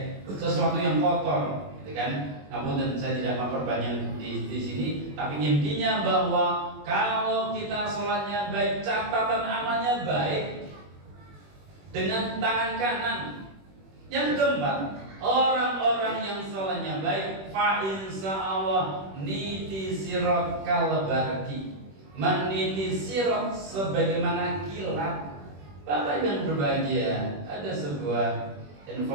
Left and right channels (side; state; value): left; late; 21 ms